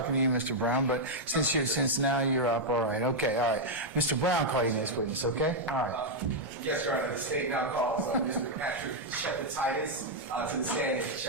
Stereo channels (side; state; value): both; normal; correlation -0.02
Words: to you, Mr. Brown, but since now you're up, all right, okay, all right. Mr. Brown, call your next witness, okay? All right. Yes, Your Honor, the state now calls Mr. Patrick Shepatitis to the stand.